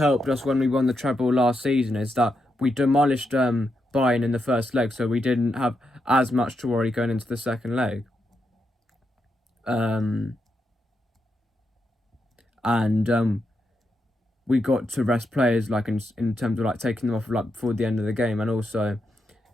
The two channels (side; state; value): both; normal; correlation 0.84